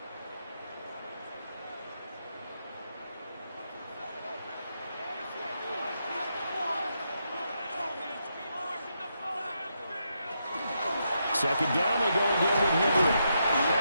Second down, they go again with Henry.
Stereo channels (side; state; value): both; inverted; correlation -0.81